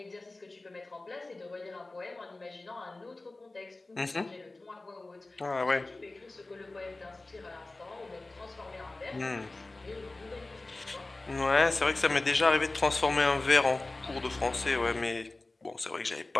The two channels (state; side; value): quieter; right; 3.1 dB